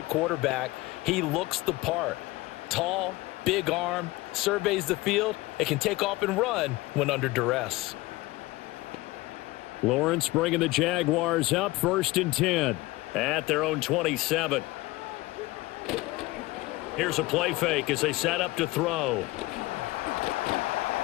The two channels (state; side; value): quieter; right; 20.1 dB